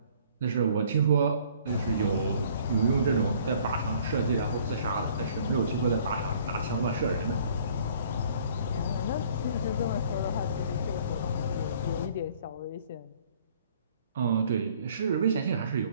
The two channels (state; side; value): inverted; both; correlation -0.56